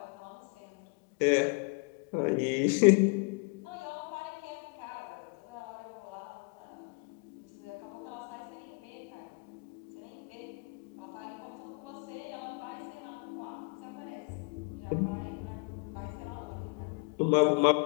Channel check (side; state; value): right; quieter; 33.0 dB